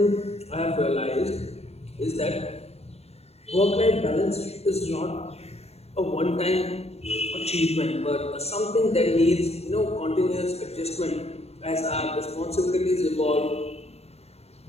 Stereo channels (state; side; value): late; right; 0.30 ms